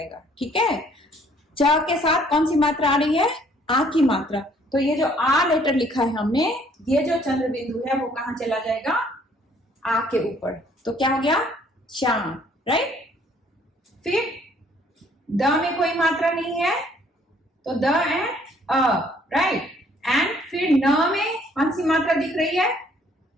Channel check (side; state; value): both; normal; correlation 0.61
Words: ठीक है। च के साथ कौन सी मात्रा आ रही है, आ की मात्रा। तो ये जो आ लेटर लिखा है हमने, ये जो चंद्र बिंदु है वो कहां चला जाएगा, आ के ऊपर। तो क्या हो गया, चांद, राइट। फिर द में कोई मात्रा नहीं है तो the end a, right. And फिर न में कौन सी मात्रा दिख रही है,